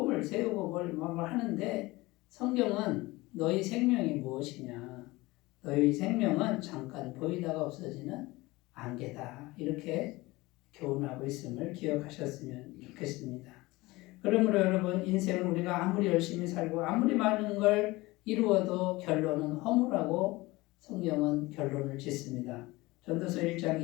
세우고 뭘 하는데 성경은 너희 생명이 무엇이냐? 너희 생명은 잠깐 보이다가 없어지는 안개다, 이렇게 교훈하고 있음을 기억하셨으면 좋겠습니다. 그러므로 여러분, 인생은 우리가 아무리 열심히 살고 아무리 많은 걸 이루어도 결론은 허무라고 성경은 결론을 짓습니다. 전도서 1장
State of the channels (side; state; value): right; quieter; 21.0 dB